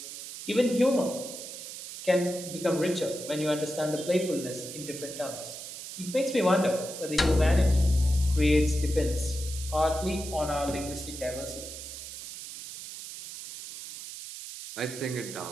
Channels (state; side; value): noise; right; hiss, 10 dB below the sound